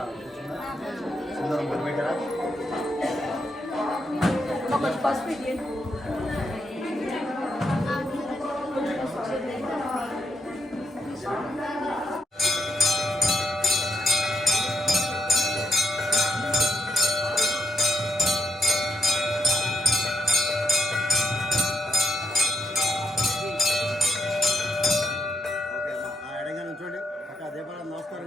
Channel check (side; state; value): both; normal; correlation 0.78